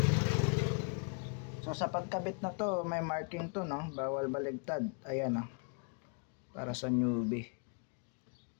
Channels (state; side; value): quieter; right; 36.8 dB